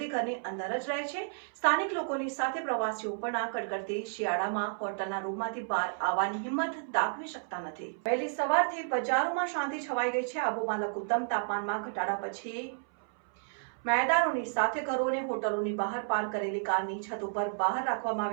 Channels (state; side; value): silent; left; 57 dB below the other